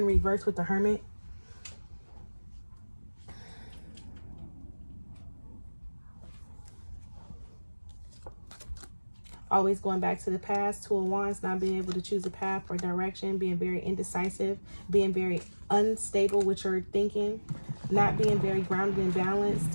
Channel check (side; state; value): both; inverted; correlation -1.00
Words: reverse with the Hermit. Always going back to the past. 2 of Wands, not being able to choose a path or direction, being very indecisive, being very unstable with your thinking, not being very grounded and balanced